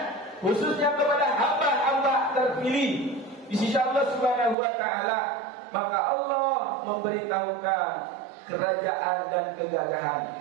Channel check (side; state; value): left; drops out; at 4.5 s